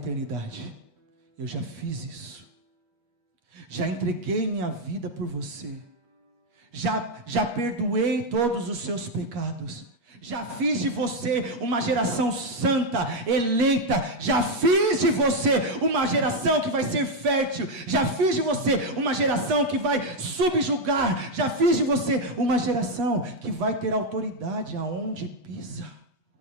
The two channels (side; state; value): left; late; 8.3 ms